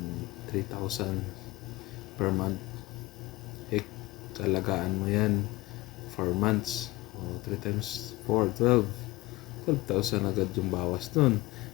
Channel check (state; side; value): quieter; right; 20.4 dB